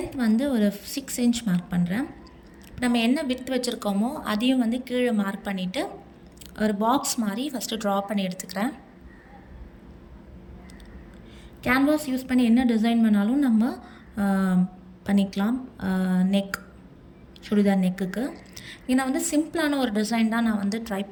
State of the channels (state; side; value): identical; both; correlation 1.00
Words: வந்து ஒரு 6 இன்ச் மார்க் பண்ணுறேன். நம்ம என்ன விட்த் வச்சுருக்கோமோ அதையும் வந்து கீழே மார்க் பண்ணிவிட்டு ஒரு பாக்ஸ் மாதிரி ஃபஸ்ட்டு ட்ரா பண்ணி எடுத்துக்கிறேன். கேன்வாஸ் யூஸ் பண்ணி என்ன டிசைன் பண்ணாலும் நம்ம பண்ணிக்கலாம். சுடிதார் நெக்குக்கு ஏன்னா வந்து சிம்பிளான ஒரு டிசைன் தான் நான் வந்து ட்ரை